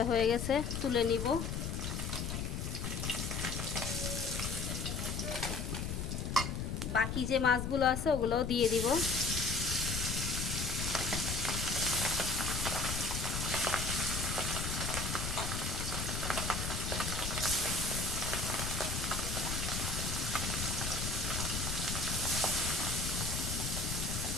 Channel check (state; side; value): noise; left; rumble, 3 dB below the sound